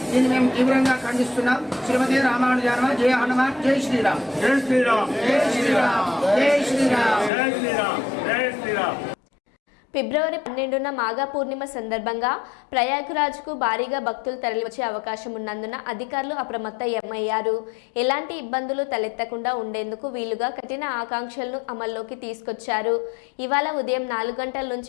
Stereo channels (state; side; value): drops out; right; at 7.3 s